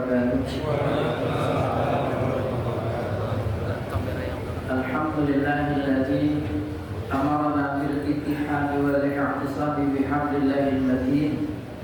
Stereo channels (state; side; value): identical; both; correlation 1.00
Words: Alhamdulillahilladzi amarna bil ittihad wal i'tisam bihablillahil matin.